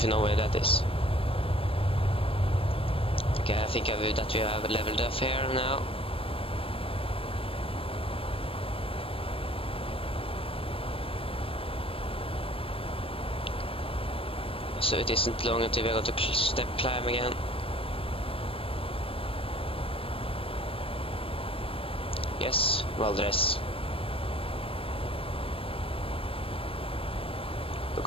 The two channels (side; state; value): right; late; 0.27 ms